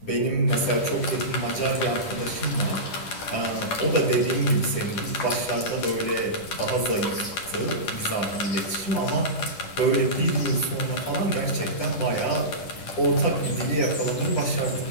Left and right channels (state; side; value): late; right; 10 ms